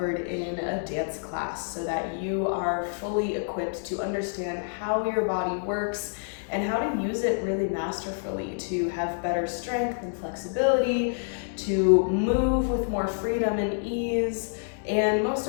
in a dance class, so that you are fully equipped to understand how your body works and how to use it really masterfully to have better strength and flexibility, to move with more freedom and ease, and most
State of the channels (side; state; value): right; silent; digital silence